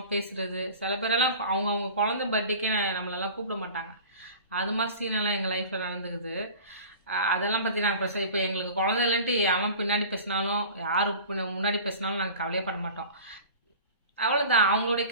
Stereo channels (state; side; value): inverted; both; correlation -0.40